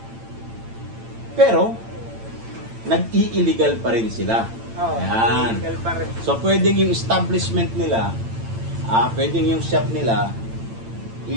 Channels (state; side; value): late; left; 8.9 ms